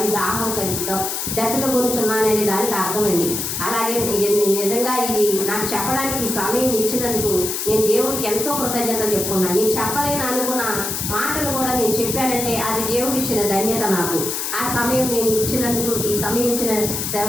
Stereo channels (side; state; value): left; noise; hiss, 3 dB below the sound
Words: దాహం కలుగుతాం, దప్పిక కొనుచున్నాననే దానికి అర్థమండి. అలాగే నిజంగా ఇది నాకు చెప్పడానికి సమయం ఇచ్చినందుకు నేను దేవుడికి ఎంతో కృతజ్ఞత చెప్పుకున్నాను. నేను చెప్పలేను అనుకున్న మాటలు కూడా నేను చెప్పానంటే అది దేవుడు ఇచ్చిన ధన్యత నాకు. ఆ సమయం నేను ఇచ్చినందుకు, ఈ సమయం ఇచ్చిన